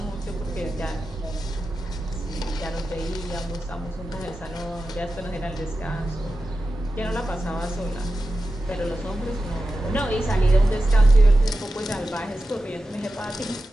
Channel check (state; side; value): normal; both; correlation 0.92